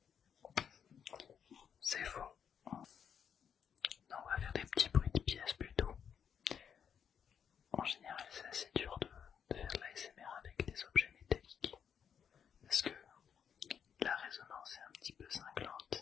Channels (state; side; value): quieter; right; 7.8 dB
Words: C'est faux. Non, on va faire des petits bruits de pièces plutôt. En général c'est assez dur de faire de l'ASMR avec des objets métalliques. Parce que la résonance est un petit peu